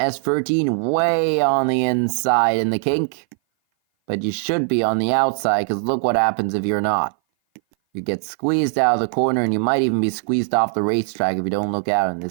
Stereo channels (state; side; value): silent; left; 58 dB below the other